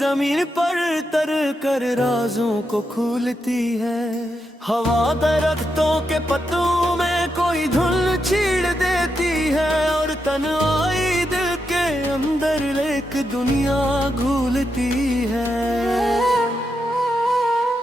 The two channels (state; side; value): normal; both; correlation 0.84